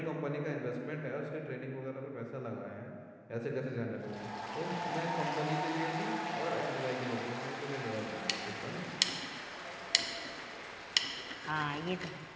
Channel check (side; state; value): both; identical; correlation 1.00